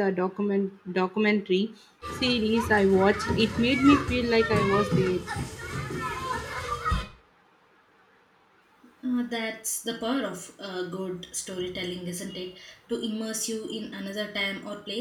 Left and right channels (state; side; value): identical; both; correlation 1.00